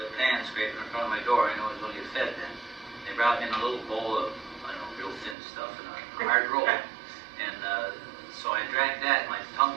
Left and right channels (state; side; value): drops out; left; at 5.4 s